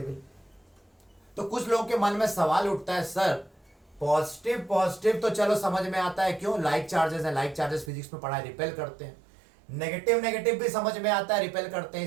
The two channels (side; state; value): left; drops out; at 7.9 s